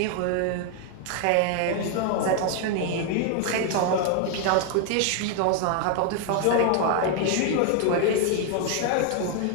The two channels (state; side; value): different; both; correlation 0.00